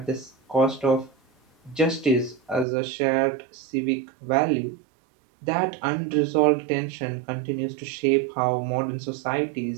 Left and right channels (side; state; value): left; drops out; at 2.7 s